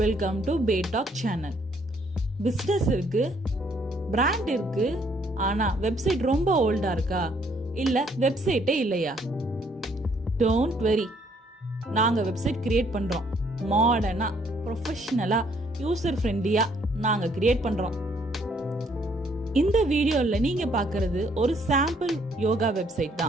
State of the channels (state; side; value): normal; both; correlation 0.66